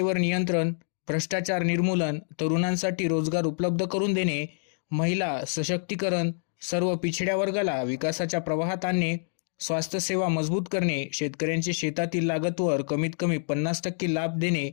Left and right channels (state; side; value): silent; right; digital silence